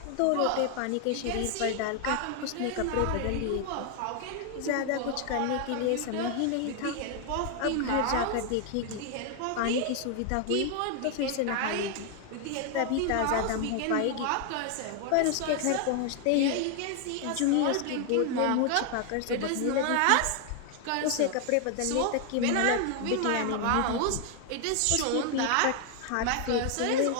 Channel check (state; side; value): different; both; correlation 0.00